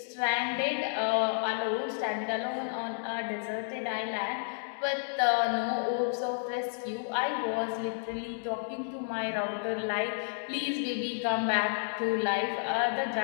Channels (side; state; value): right; silent; digital silence